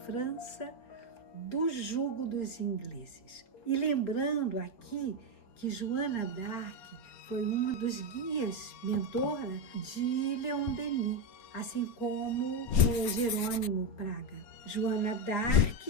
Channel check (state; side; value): late; right; 4.5 ms